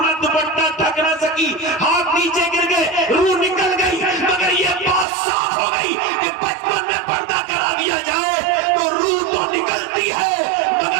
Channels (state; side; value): drops out; left; at 5.1 s